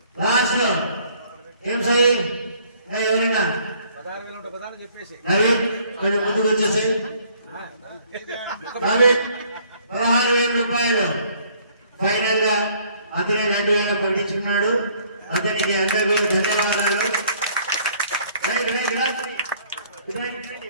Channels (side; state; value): both; inverted; correlation -0.60